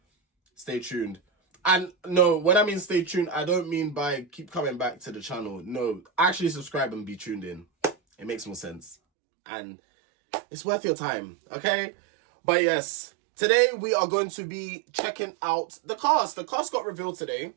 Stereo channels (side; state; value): left; drops out; at 9.0 s